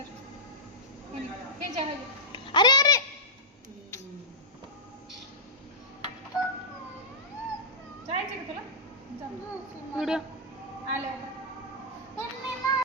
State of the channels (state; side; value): normal; both; correlation -0.14